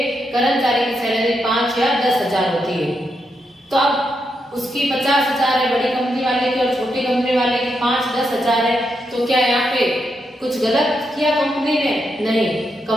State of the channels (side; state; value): both; normal; correlation 0.82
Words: कर्मचारी की सैलरी 5 या 10,000 होती है। तो अब उसकी 50,000 है बड़ी कंपनी वाले की और छोटी कंपनी वाले की 5-10,000 है, तो क्या यहाँ पे कुछ गलत किया कंपनी ने? नहीं,